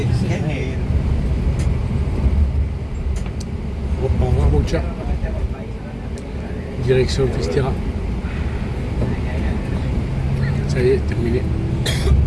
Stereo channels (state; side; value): identical; both; correlation 1.00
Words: Au revoir mon chat. Direction Festera. Ça y est, terminé.